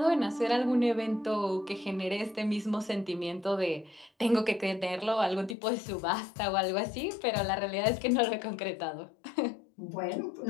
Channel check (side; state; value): right; drops out; at 5.6 s